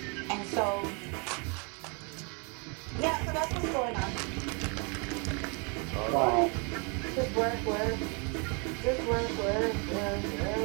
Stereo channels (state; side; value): quieter; left; 34.3 dB